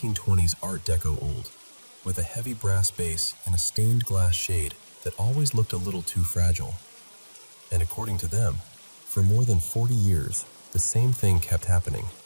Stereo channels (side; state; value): both; inverted; correlation -1.00